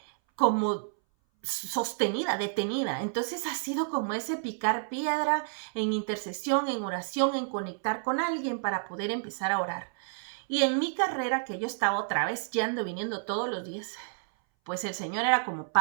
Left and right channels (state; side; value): silent; left; 58 dB below the other